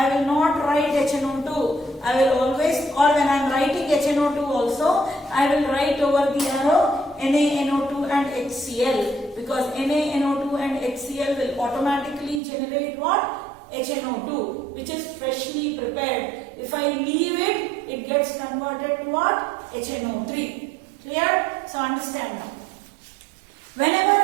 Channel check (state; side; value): drops out; left; at 12.4 s